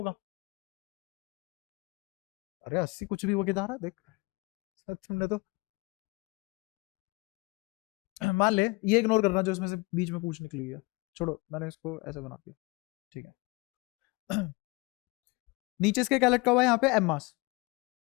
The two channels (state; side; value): quieter; right; 25.8 dB